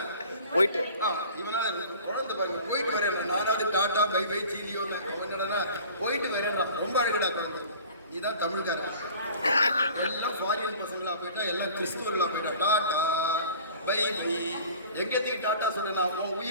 போயிட்டு இவனா குழந்தை பாருங்க. போயிட்டு வரேன் நானாவது டாட்டா பை பை சீலியோ என்னடா போயிட்டு வரேன்டா. ரொம்ப அழகடா குழந்தை. இதுதான் தமிழ்காரன். எல்லாம் ஃபாரின் பசங்களா போயிட்டா, எல்லாம் கிறிஸ்துவர்களா போயிட்டா டாட்டா பை பை. எங்கத்துக்கு டாட்டா சொல்றேன்? உன்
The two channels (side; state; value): both; inverted; correlation -0.45